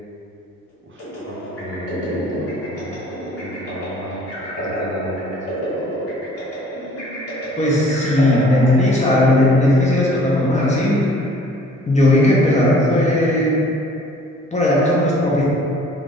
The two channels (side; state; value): both; normal; correlation 0.53